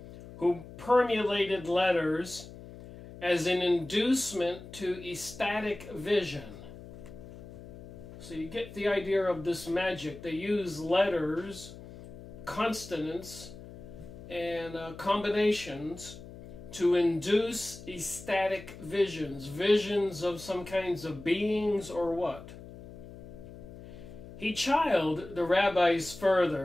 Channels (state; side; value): noise; left; hum, 15 dB below the sound